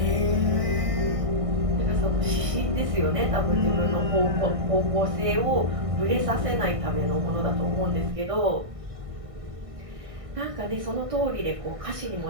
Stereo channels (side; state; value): left; late; 1.6 ms